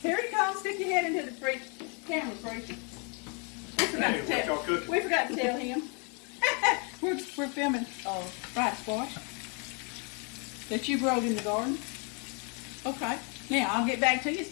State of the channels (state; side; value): quieter; right; 35.9 dB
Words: Here he comes. Stick your head into the camera, preacher. We forgot to tell him. we're filming fried squash that you growed in the garden. Okay. Now I'll get back to you. It's